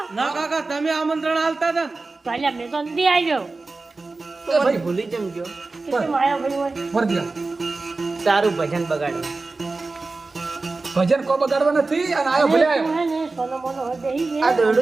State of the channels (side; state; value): left; quieter; 3.6 dB